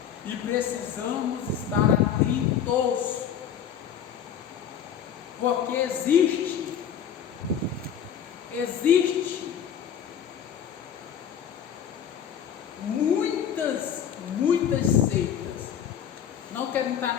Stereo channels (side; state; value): right; quieter; 8.7 dB